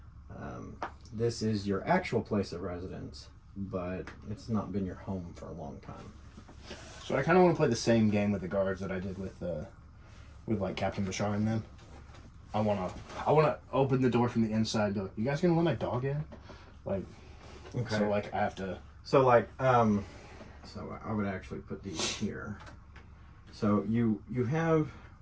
This is your actual place of residence, but it's not been your home for a long time. so I kind of want to play the same game with the guards that I did with like Captain Bashar and them. I want to open the door from the inside and go, you guys gonna let my dog in? Like, okay. So, like, I have to... So, like, so I would actually put these here. So you have,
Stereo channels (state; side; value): identical; both; correlation 1.00